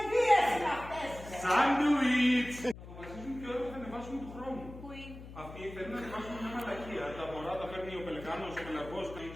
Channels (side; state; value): left; noise; hum, 14 dB below the sound